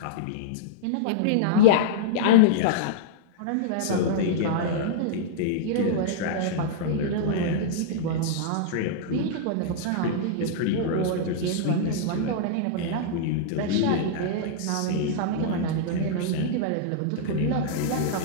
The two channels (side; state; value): both; different; correlation -0.02